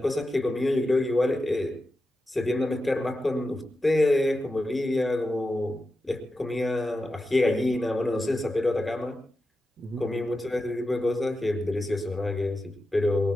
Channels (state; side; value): normal; both; correlation 0.91